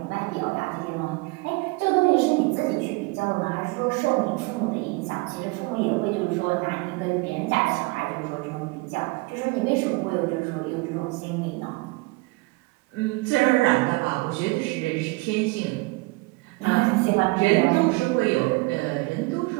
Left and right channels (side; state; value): left; quieter; 24.9 dB